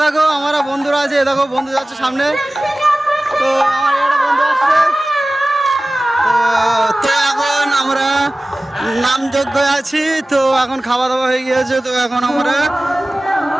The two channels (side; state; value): both; normal; correlation 0.97